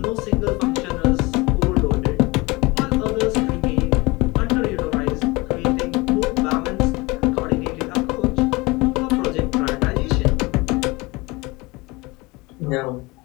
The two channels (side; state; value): right; quieter; 23.9 dB